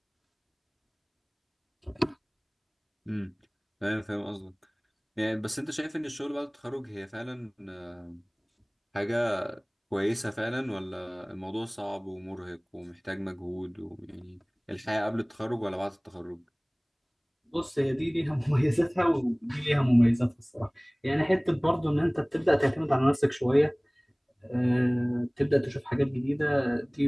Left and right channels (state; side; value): identical; both; correlation 1.00